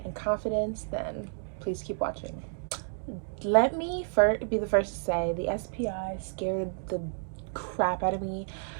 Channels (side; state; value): left; silent; digital silence